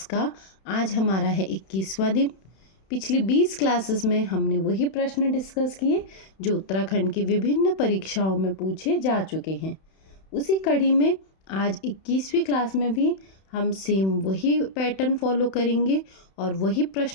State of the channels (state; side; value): late; right; 31 ms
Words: का आज हमारा है 21वां दिन। पिछली 20 क्लासेस में हमने वही प्रश्न डिस्कस किए जो उत्तराखंड की विभिन्न परीक्षाओं में पूछे जा चुके हैं। उसी कड़ी में आज 21वीं क्लास में भी हम सेम वही पैटर्न फॉलो करेंगे और वही